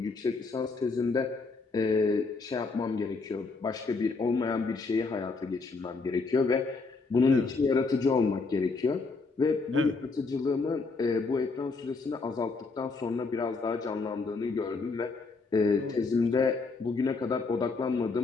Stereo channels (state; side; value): quieter; right; 4.1 dB